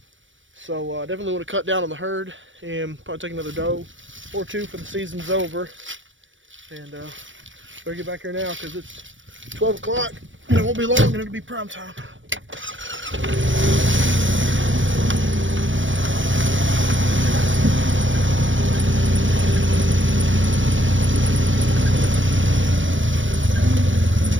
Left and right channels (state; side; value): late; left; 0.56 ms